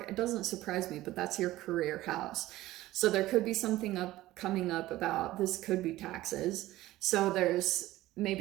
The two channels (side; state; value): left; quieter; 16.4 dB